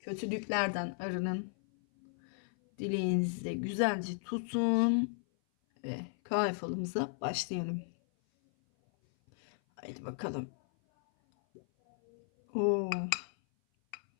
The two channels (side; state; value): right; silent; 54 dB below the other